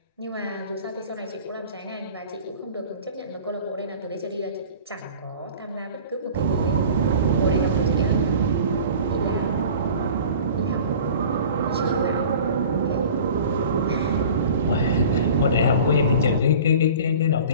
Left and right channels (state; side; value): inverted; both; correlation -0.42